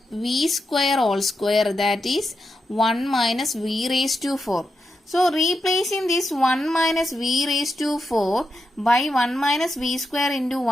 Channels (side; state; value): both; normal; correlation 0.86